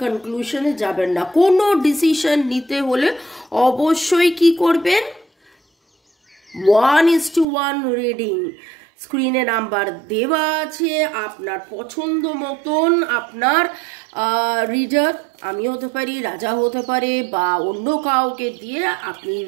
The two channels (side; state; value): left; drops out; at 7.5 s